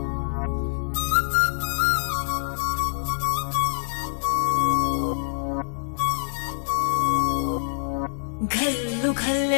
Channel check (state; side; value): silent; right; digital silence